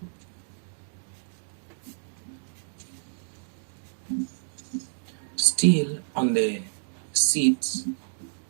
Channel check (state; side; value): silent; left; digital silence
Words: Still on the seats,